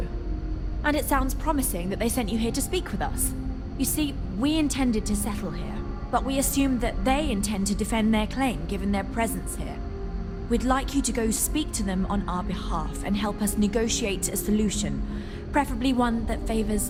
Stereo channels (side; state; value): both; identical; correlation 1.00